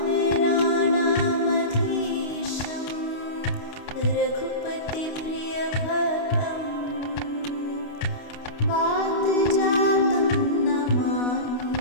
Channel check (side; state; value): right; late; 29 ms